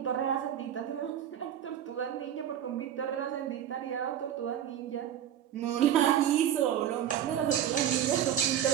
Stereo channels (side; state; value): left; quieter; 10.3 dB